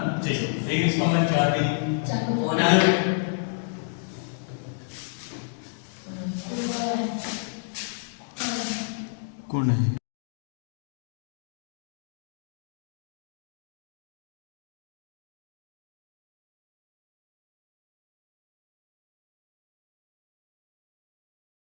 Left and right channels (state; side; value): silent; right; digital silence